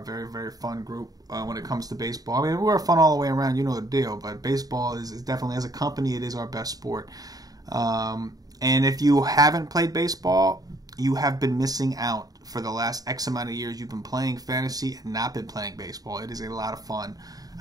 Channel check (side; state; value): left; late; 0.18 ms